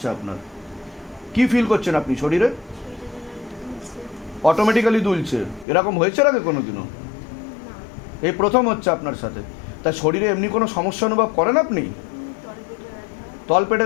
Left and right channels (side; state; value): right; drops out; at 5.7 s